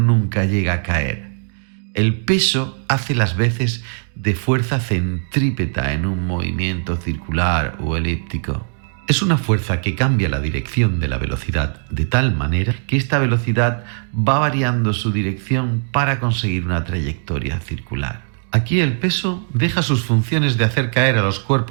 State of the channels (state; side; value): silent; left; digital silence